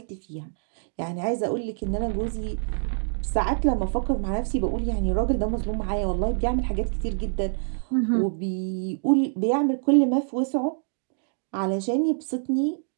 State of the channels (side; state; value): left; silent; digital silence